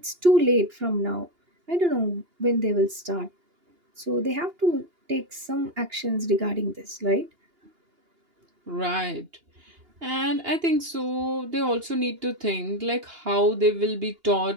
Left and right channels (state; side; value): late; left; 2.8 ms